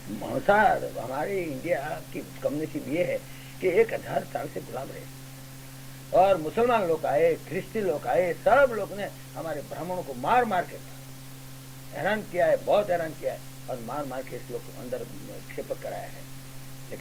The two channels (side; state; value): both; identical; correlation 1.00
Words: मांसाहार हमारे इंडिया की कम्युनिटी ये है कि 1000 साल से गुलाम रहे, और मुसलमान लोग आए, ख्रिस्ती लोग आए, सब लोग ने हमारे ब्राह्मणों को मार मार के हैरान किया है, बहुत हैरान किया है, और मार मार के इस लोग अंदर क्षेपक कराया है।